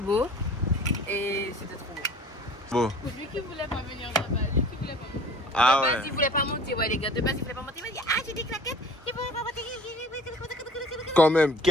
Et c'était trop beau. Bon. Lui qui voulait pas venir là-bas, lui qui voulait pas venir. Ah De base, ouais. il voulait pas monter, ouais les gars. De base, il voulait pas monter. Il m'a dit, ah, j'ai des claquettes. Il voulait pas monter. Quand même,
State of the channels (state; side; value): normal; both; correlation 0.47